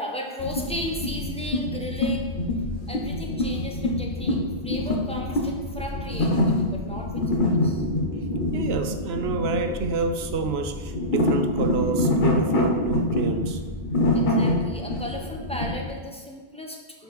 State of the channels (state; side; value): normal; both; correlation -0.18